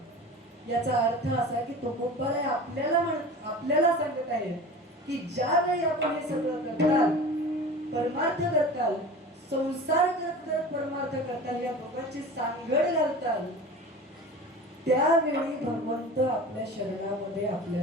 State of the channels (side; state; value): both; normal; correlation 0.36